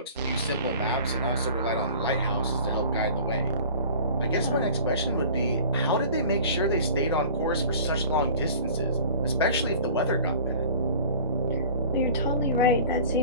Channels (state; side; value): inverted; both; correlation -0.43